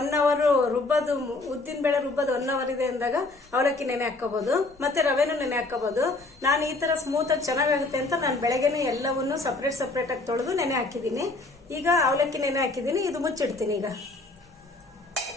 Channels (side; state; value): right; quieter; 3.2 dB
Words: ಅವರ್ ರುಬ್ಬೋದು, ಉದ್ದಿನ ಬೇಳೆ ರುಬ್ಬೋದು 1 ಅವರ್ ಇದೆ ಅಂದಾಗ ಅವಲಕ್ಕಿ ನೆನೆ ಹಾಕೋಬಹುದು, ಮತ್ತೆ ರವೆನೂ ನೆನೆ ಹಾಕೋಬಹುದು. ನಾನು ಈ ತರ ಸ್ಮೂತ್ ಆಗಿ ಚೆನ್ನಾಗುತ್ತೆ ಅಂತ ನಾನು ಬೆಳಗ್ಗೆನೇ ಎಲ್ಲವನ್ನೂ ಸಪರೇಟ್ ಆಗಿ ತೊಳೆದು ನೆನೆ ಹಾಕಿದ್ದೀನಿ. ಈಗ ಅವಲಕ್ಕಿ ನೆನೆ ಹಾಕಿದ್ದೀನಿ, ಇದು ಮುಚ್ಚಿಡ್ತೀನಿ. ಈಗ